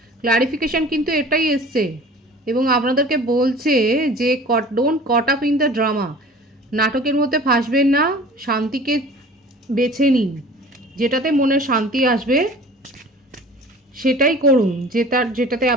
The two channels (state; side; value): normal; both; correlation 0.44